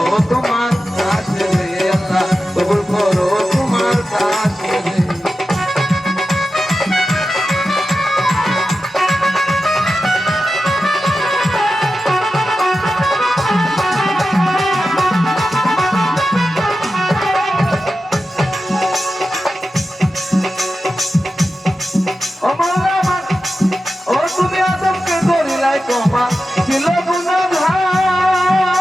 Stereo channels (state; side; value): normal; both; correlation 0.92